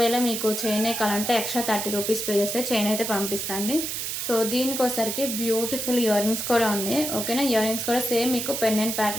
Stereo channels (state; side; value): noise; right; hiss, 3 dB below the sound